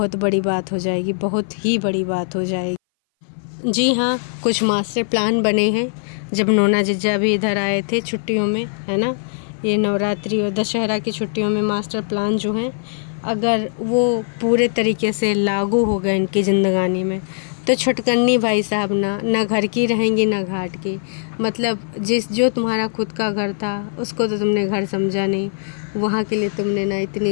बड़ी बात हो जाएगी, बहुत ही बड़ी बात हो जाएगी। जी हाँ, कुछ मास्टर प्लान बने हैं। जब नोना जिज्जा भी इधर आए थे छुट्टियों में, है ना, ये नवरात्रि और दशहरा की छुट्टियों में मास्टर प्लान जो हैं, अगर वो पूरे तरीके से लागू हो गए इनकी ज़िंदगानी में, तो छुटकन्नी भाई साहब ना घर की रहेंगी ना घाट की। मतलब जो तुम्हारा खुद का घर था उसको तो तुमने घर समझा नहीं, वहाँ के लिए तुमने ना इतनी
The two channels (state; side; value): silent; right; 59 dB below the other